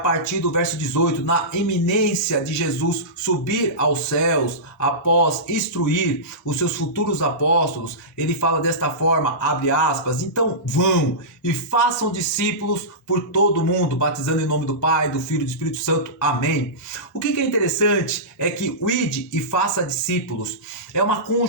do verso 18, na iminência de Jesus subir aos céus após instruir os seus futuros apóstolos, ele fala desta forma, abre aspas, então vão e façam discípulos por todo o mundo, batizando em nome do Pai, do Filho e do Espírito Santo, amém. O que é interessante é que o ide e faça discípulos é uma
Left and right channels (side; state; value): both; normal; correlation -0.18